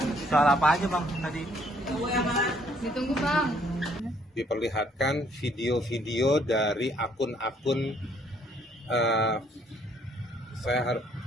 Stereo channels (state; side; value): normal; both; correlation 0.65